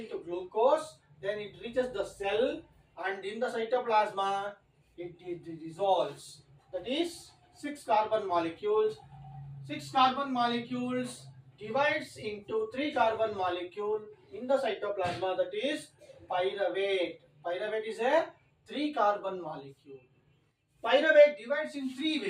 glucose. Then it reaches the cell, and in the cytoplasma, it dissolves. That is 6-carbon molecules. 6-carbon molecules divides into 3-carbon molecule in the cytoplasma. That is pyruvate. Pyruvate is a 3-carbon molecule. Pyruvate divides in 3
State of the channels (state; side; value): identical; both; correlation 1.00